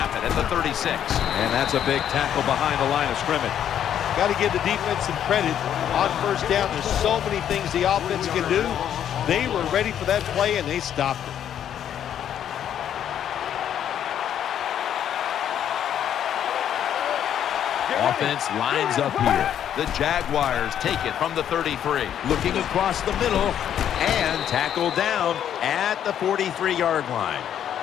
it at the 36. And that's a big tackle behind the line of scrimmage. Got to give the defense some credit. On first down, there's so many things the offense can do. They were ready for that play, and they stopped it. Offense lines up here. The Jaguars take it from the 33. Looking across the middle and tackled down at the 43-yard line.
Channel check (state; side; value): quieter; right; 9.8 dB